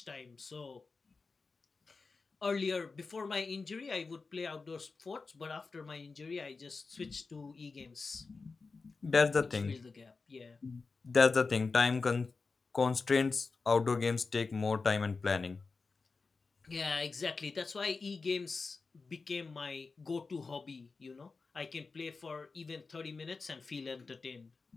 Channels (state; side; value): quieter; right; 4.3 dB